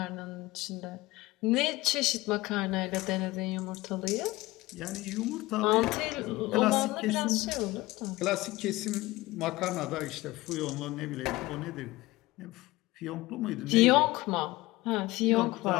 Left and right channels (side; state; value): right; quieter; 19.5 dB